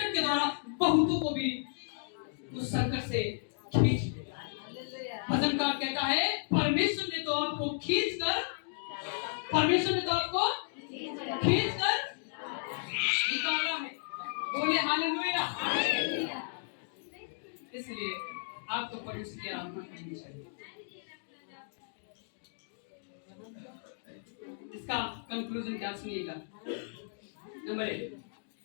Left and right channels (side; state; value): right; silent; digital silence